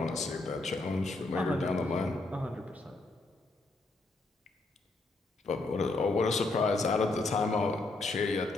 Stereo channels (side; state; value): right; quieter; 3.2 dB